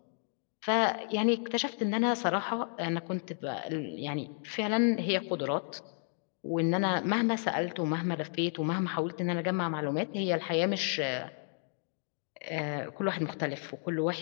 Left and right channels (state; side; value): silent; right; 56 dB below the other